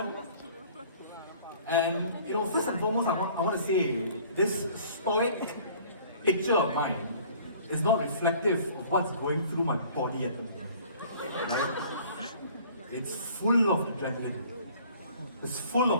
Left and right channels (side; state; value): both; inverted; correlation -0.52